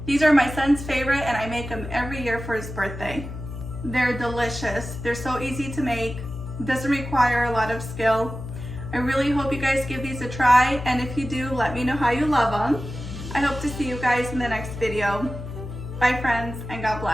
These are my son's favorite and I make them every year for his birthday. They're delicious. They're so easy to make. Doesn't require a lot of skill. I really hope you guys give these a try, and if you do, let me know how you love them. I hope to see you guys in the next video. Bye friends, and God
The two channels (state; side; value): noise; left; hum, 9 dB below the sound